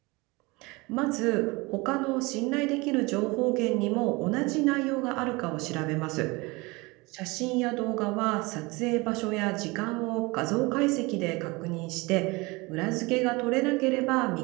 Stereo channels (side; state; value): left; quieter; 24.6 dB